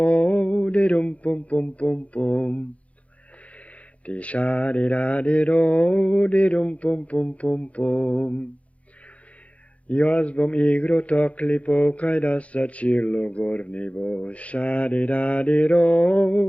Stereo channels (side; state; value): right; late; 0.065 ms